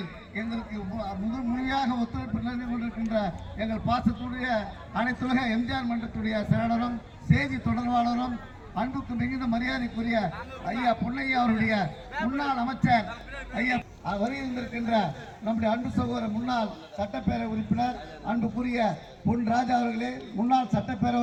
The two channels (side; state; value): both; identical; correlation 1.00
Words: எங்களுக்கு முழுமையாக ஒத்துழைப்பு நல்கி கொண்டிருக்கின்ற எங்கள் பாசத்துடைய அனைத்துலக எம்ஜிஆர் மன்றத்துடைய செயலாளரும் செய்தி தொடர்பாளரும் அன்புக்கு மிகுந்த மரியாதைக்குரிய ஐயா பொன்னையா அவருடைய முன்னாள் அமைச்சர் ஐயா வருகின்றிருக்கின்ற நம்முடைய அன்பு சகோதரர் முன்னாள் சட்டப்பேரவை உறுப்பினர் அன்புக்குரிய பொன் ராஜா அவர்களே, முன்னாள் சட்டப்பேரவை